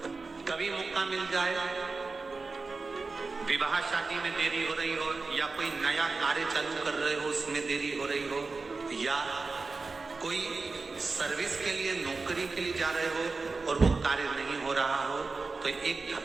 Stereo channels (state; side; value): quieter; left; 4.0 dB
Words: कभी मौका मिल जाए, विवाह शादी में देरी हो रही हो, या कोई नया कार्य चालू कर रहे हो उसमें देरी हो रही हो, या कोई सर्विस के लिए, नौकरी के लिए जा रहे हो और वो कार्य नहीं हो रहा हो, तो एक